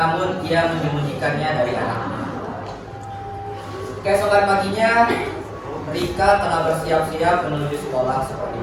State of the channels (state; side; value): identical; both; correlation 1.00